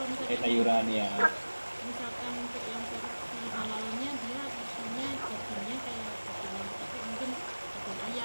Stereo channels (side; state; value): both; inverted; correlation -1.00